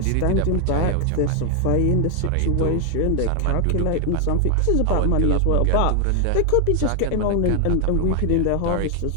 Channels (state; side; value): different; both; correlation 0.00